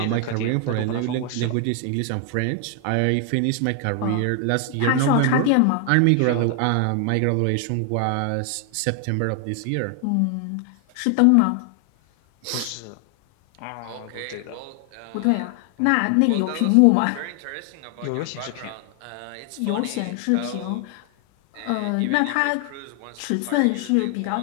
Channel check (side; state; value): both; different; correlation 0.00